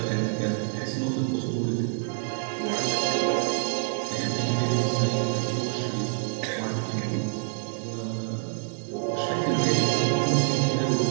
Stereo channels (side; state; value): left; silent; 56 dB below the other